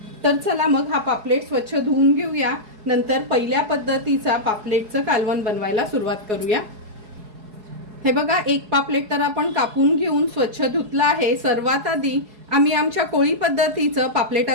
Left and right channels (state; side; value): late; left; 4.7 ms